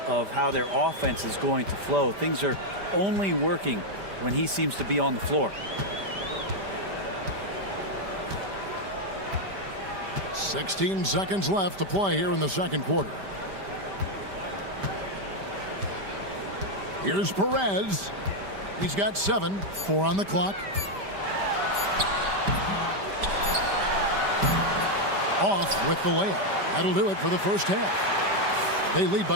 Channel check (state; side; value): late; left; 5.1 ms